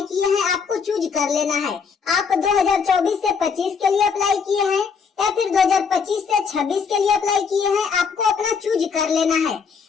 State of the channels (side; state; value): right; quieter; 5.8 dB